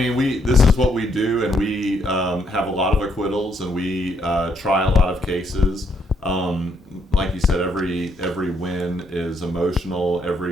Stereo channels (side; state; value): both; normal; correlation 0.73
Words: this is what we do, and we have a lot of acquittals, and we try a lot of cases. Like you said, every win is emotional.